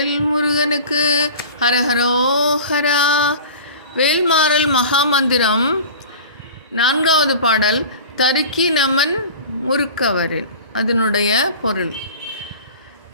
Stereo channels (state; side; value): inverted; both; correlation -0.38